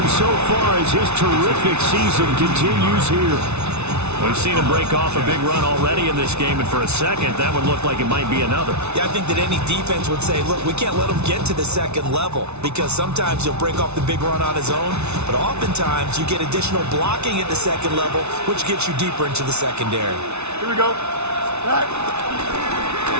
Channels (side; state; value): left; late; 0.81 ms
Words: so far as his terrific season continues here. We've seen him break off a big run already in this game, and for a second, that would look like it might be another. Yeah, I think that any defense would say, look, we can't let him get to the second level, because sometimes he'll break off the big run on his own, but oftentimes you get additional blocking at the second level, which gets you deeper into the secondary. Here we go. Right.